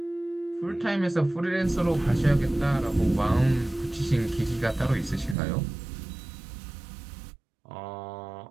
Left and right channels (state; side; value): drops out; left; at 5.4 s